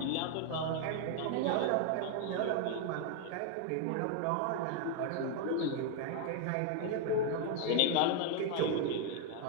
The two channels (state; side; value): different; both; correlation 0.00